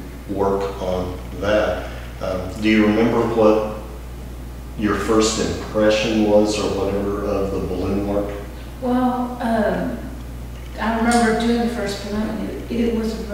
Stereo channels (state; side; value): identical; both; correlation 1.00